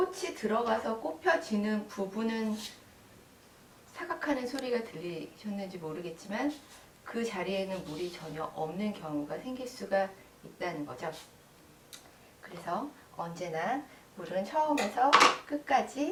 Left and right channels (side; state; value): both; identical; correlation 1.00